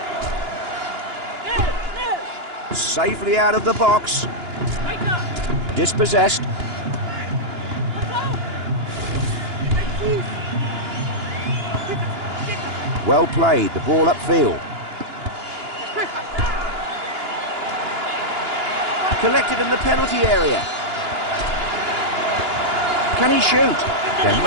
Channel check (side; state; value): left; late; 2.9 ms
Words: Safely out of the box. Dispossessed. Well played, the ball upfield. Collected in the penalty area. Can he shoot? There